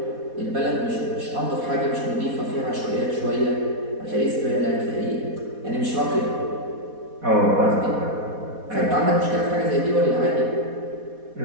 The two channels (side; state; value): left; late; 4.2 ms